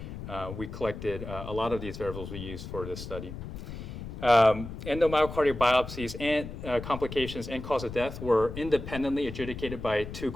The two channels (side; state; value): left; noise; rumble, 9 dB below the sound